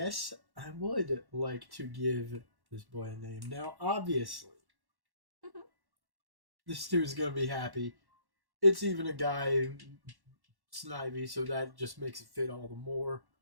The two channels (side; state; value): left; late; 1.1 ms